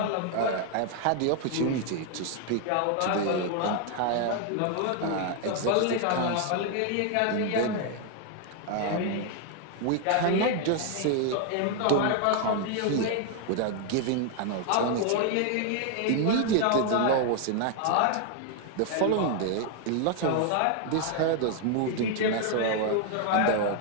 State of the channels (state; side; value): different; both; correlation 0.00